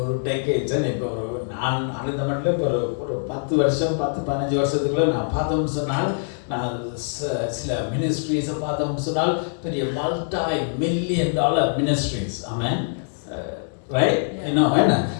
டெக்கேட்ஸ் இப்போ நான் அந்த மட்டும் இப்போ ஒரு 10 வருஷம் 10-15 வருஷத்துக்குள்ள நான் பார்த்தோம்னு சொன்னால், நான் சில மினிஸ்ட்ரீஸை பார்த்தோம்னு சொன்னால் பெரிய $multi-million மினிஸ்ட்ரீஸ். ஆமென். ரைட்? இன்னும் என்ன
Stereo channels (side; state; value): right; silent; digital silence